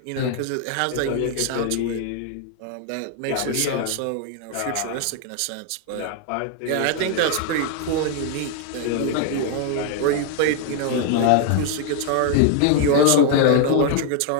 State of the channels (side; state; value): both; different; correlation 0.00